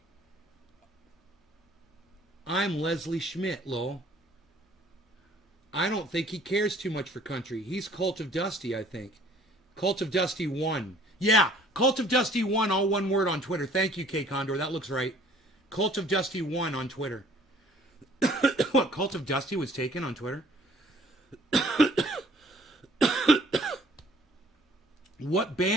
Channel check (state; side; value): normal; both; correlation 0.56